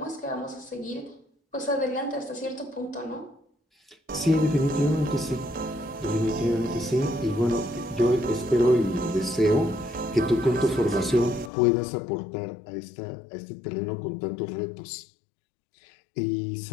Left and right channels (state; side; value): drops out; right; at 11.5 s